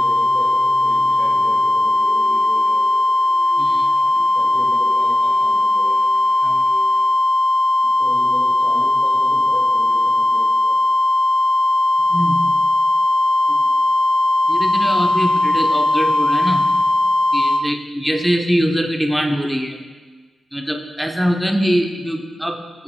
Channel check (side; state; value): both; normal; correlation 0.94